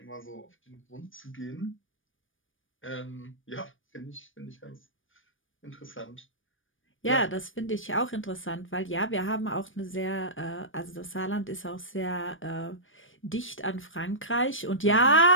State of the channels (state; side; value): late; right; 0.57 ms